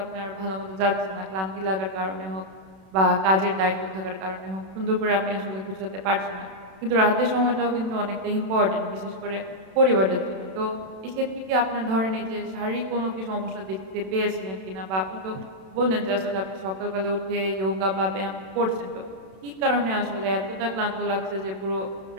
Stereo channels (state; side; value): late; left; 31 ms